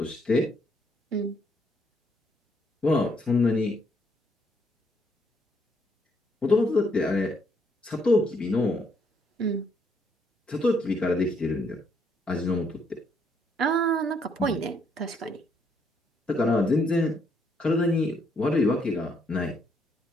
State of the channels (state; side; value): normal; both; correlation 0.72